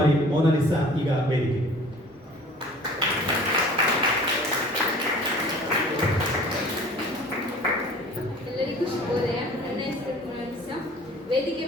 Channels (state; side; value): normal; both; correlation 0.47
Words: ಮೋನಾಲಿಸಾ ಈಗ ವೇದಿಕೆ. ಎಲ್ಲರಿಗೂ ಶುಭೋದಯ. ನನ್ನ ಹೆಸರು ಮೋನಾಲಿಸಾ. ವೇದಿಕೆ